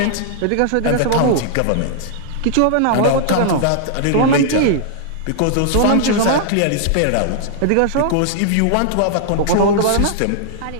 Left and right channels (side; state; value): both; different; correlation -0.01